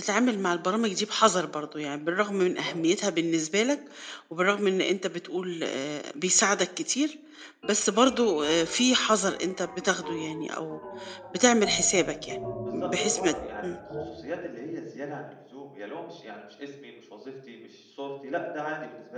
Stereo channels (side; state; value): both; identical; correlation 1.00